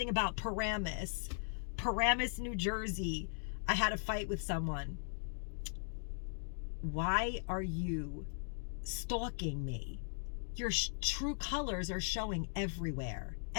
about Paramus, New Jersey. I had a fight with someone. Why are you stalking me? Your true colors are showing everywhere.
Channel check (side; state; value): right; silent; digital silence